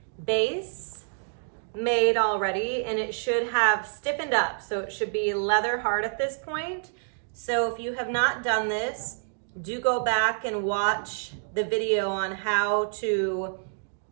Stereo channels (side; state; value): left; silent; digital silence